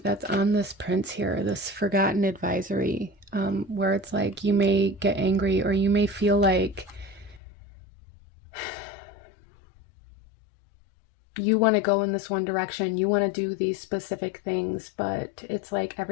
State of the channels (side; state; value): right; drops out; at 7.4 s